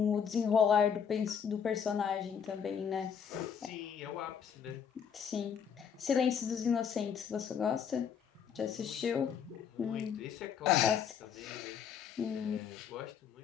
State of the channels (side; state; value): right; quieter; 7.5 dB